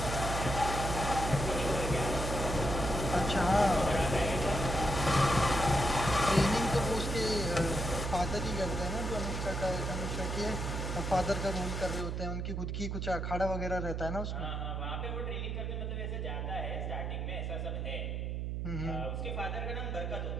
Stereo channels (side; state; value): right; noise; hum, 2 dB below the sound